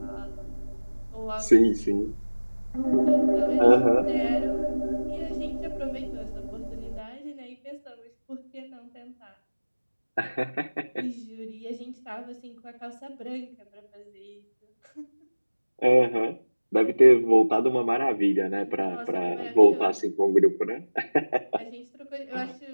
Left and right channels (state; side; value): inverted; both; correlation -1.00